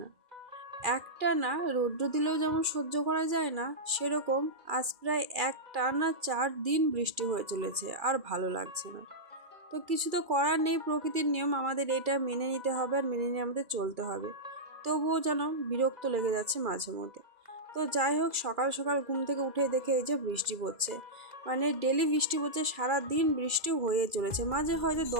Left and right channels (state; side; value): late; left; 2.4 ms